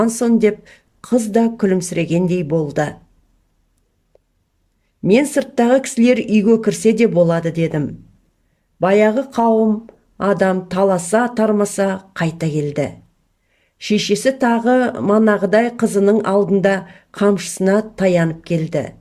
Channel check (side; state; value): both; identical; correlation 1.00